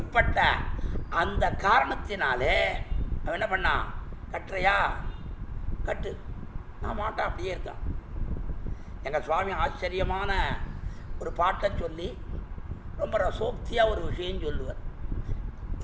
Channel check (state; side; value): identical; both; correlation 1.00